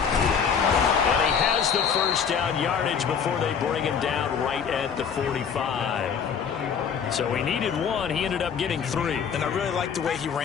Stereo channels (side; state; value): right; quieter; 6.9 dB